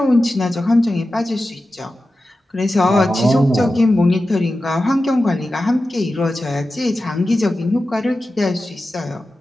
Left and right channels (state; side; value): normal; both; correlation 0.93